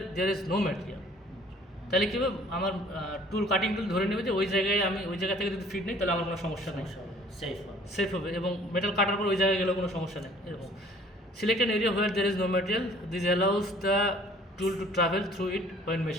there is no material. তাহলে কী হবে, আমার টুল কাটিং টুল ধরে নেবে যে ওই জায়গায় আমি ওই জায়গা থেকে যদি ফিট নেই তাহলে আমার কোনো সমস্যা নেই, সেফ হবে। সেফ হবে, এবং মেটাল কাটার পর ওই জায়গায় গেলেও কোনো সমস্যা নেই এরকম। Select an area where there is no material, this allows the tool to travel through it when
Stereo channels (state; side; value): normal; both; correlation 0.55